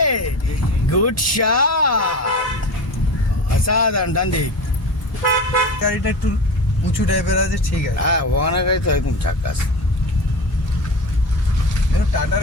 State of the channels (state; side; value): late; right; 1.8 ms